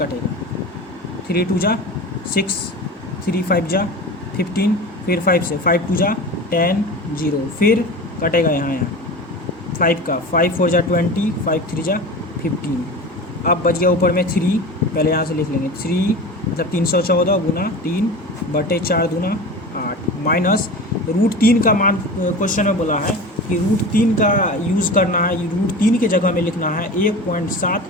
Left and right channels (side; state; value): both; normal; correlation 0.32